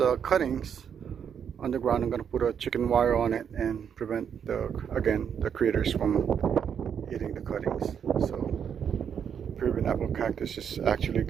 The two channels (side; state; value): left; quieter; 7.9 dB